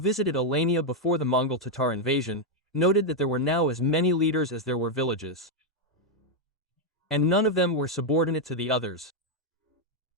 Alania before the Mongol Tatar invasion, noted that there were now as many leaders as there were villages, and none of them were subordinate to the others.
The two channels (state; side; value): normal; both; correlation 0.01